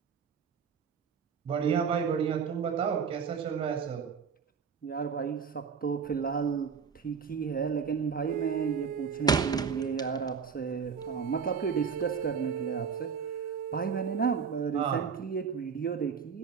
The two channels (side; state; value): left; quieter; 6.4 dB